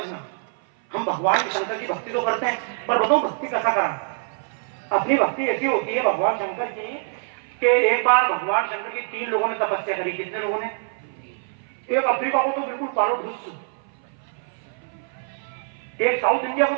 हम भगवान शंकर की भक्ति तो करते हैं, पर बताओ भक्ति कैसा करा? अपनी भक्ति ऐसी होती है भगवान शंकर की कि एक बार भगवान शंकर की 3 लोगों ने तपस्या करी। कितने लोगों ने? एक अफ्रीका को तो बिल्कुल पारो ढूस, एक साउथ इंडिया को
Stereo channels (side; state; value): left; silent; 57 dB below the other